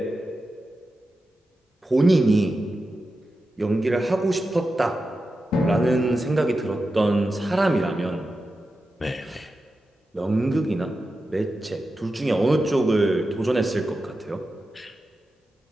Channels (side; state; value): both; normal; correlation 0.91